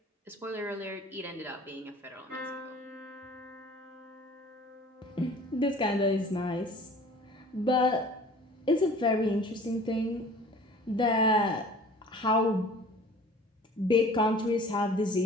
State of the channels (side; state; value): both; normal; correlation 0.47